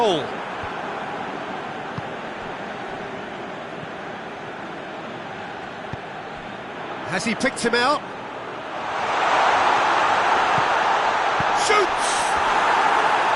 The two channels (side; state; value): both; identical; correlation 1.00